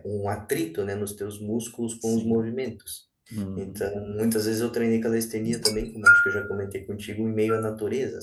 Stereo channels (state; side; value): identical; both; correlation 1.00